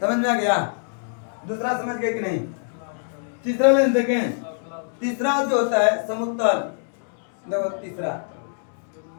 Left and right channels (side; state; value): right; silent; 63 dB below the other